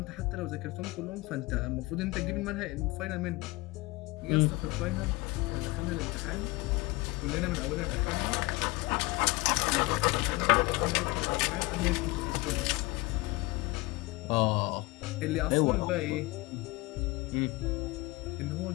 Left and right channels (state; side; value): quieter; right; 22.7 dB